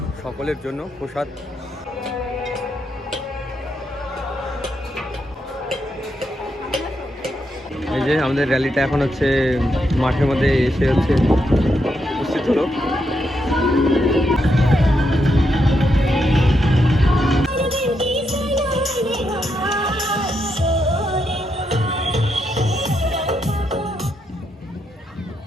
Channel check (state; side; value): normal; both; correlation 0.81